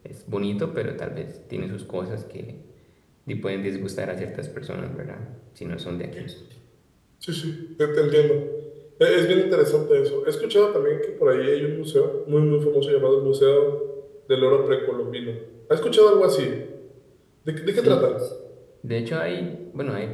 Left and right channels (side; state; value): both; identical; correlation 1.00